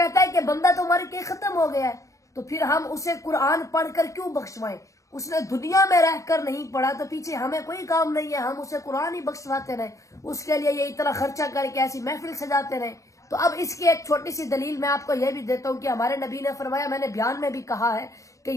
ہے کہ بندہ تو مر کے ختم ہو گیا ہے, تو پھر ہم اسے قرآن پڑھ کر کیوں بخشوائیں؟ اس نے دنیا میں رہ کر نہیں پڑھا تو پیچھے ہمیں کوئی کام نہیں ہے, ہم اسے قرآن ہی بخشواتے رہیں, اس کے لیے یہ اتنا خرچہ کر کے ایسی محفل سجاتے رہیں. تو اب اس کی ایک چھوٹی سی دلیل میں آپ کو یہ بھی دیتا ہوں کہ ہمارے نبی نے فرمایا, میں نے بیان میں بھی کہا ہے کہ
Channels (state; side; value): late; right; 0.16 ms